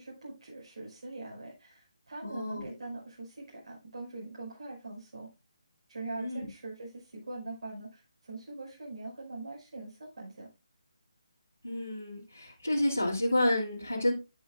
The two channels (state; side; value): inverted; both; correlation -0.92